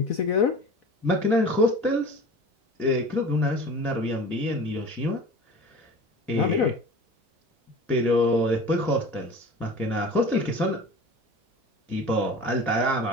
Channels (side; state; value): both; normal; correlation 0.39